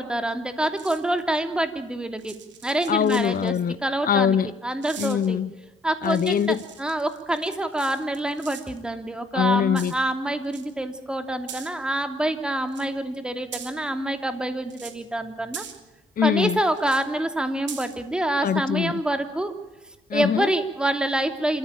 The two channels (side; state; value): both; normal; correlation 0.69